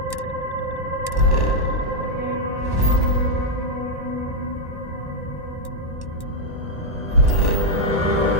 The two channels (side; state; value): right; late; 1.1 ms